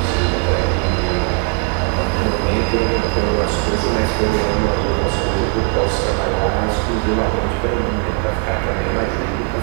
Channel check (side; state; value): left; quieter; 34.0 dB